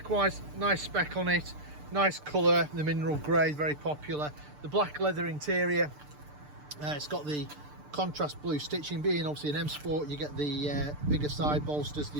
wise, nice spec on it, nice colour, the mineral grey, very popular. The black leather interior. It's got the contrast blue stitching. Being obviously an M Sport, you get the bigger side bolsters, the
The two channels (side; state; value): left; late; 6.7 ms